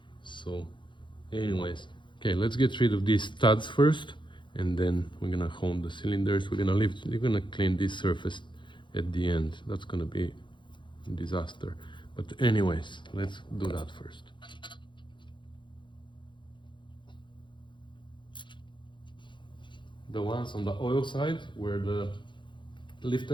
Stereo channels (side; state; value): right; late; 0.23 ms